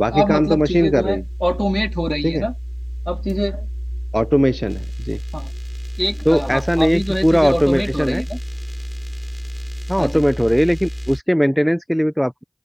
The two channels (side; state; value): both; identical; correlation 1.00